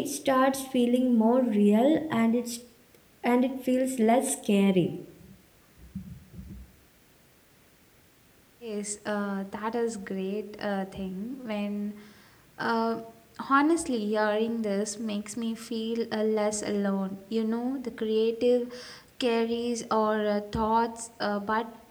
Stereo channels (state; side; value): identical; both; correlation 1.00